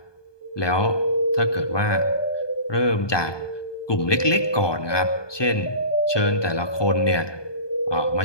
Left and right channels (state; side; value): late; right; 1.2 ms